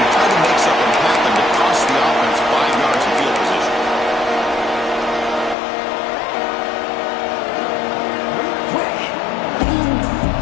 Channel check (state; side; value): drops out; right; at 5.6 s